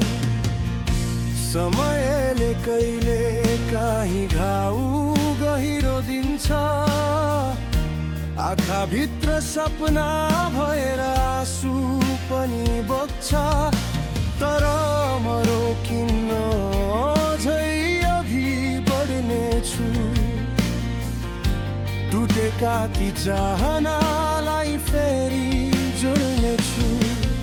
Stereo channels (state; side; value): identical; both; correlation 1.00